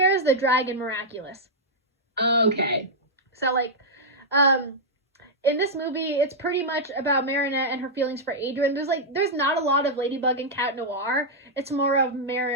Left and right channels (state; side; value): normal; both; correlation -0.06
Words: the dragon Miraculous. Okay. So like, in this movie, it's pretty much about Marinette and her feelings for Adrian. There's not a lot of Ladybug and Cat Noir. It's more of